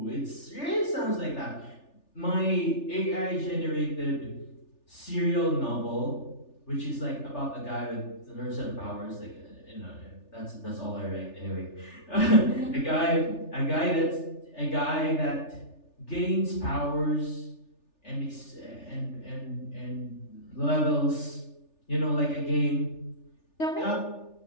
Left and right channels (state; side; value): late; right; 3.4 ms